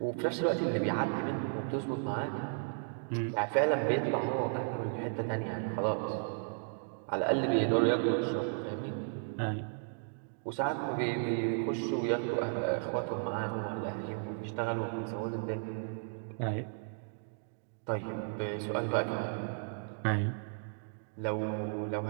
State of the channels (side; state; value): left; silent; digital silence